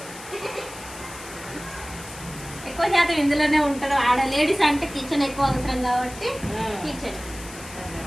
ఎక్కువ శాతం ఇందులోనే ఉంటారు. ఆడ లేడీస్ అంటే కిచెన్ ఎక్కువ అవసరం కాబట్టి కిచెన్.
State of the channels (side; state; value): left; noise; hiss, 15 dB below the sound